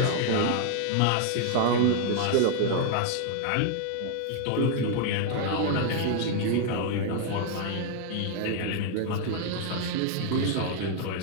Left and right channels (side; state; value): both; different; correlation 0.00